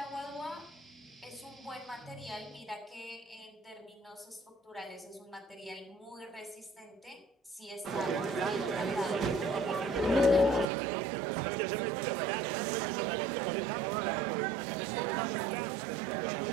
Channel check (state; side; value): drops out; left; at 10.7 s